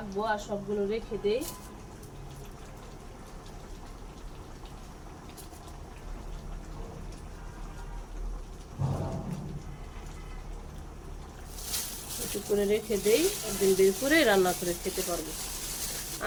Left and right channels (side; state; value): both; identical; correlation 1.00